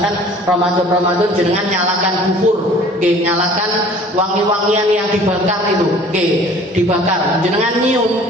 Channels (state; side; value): normal; both; correlation 0.50